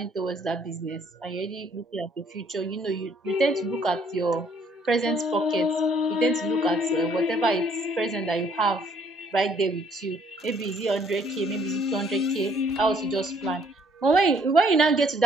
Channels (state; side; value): normal; both; correlation 0.63